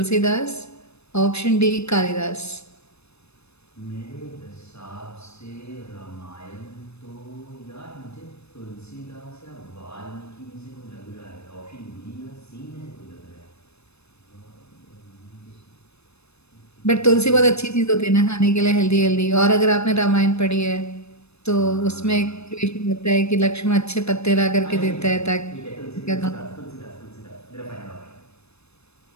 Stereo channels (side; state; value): right; late; 0.80 ms